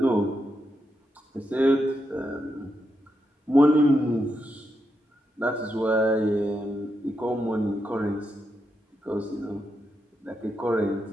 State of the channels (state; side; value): normal; both; correlation 0.84